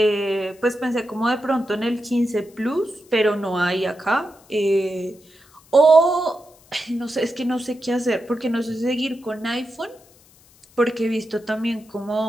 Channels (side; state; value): left; noise; hiss, 28 dB below the sound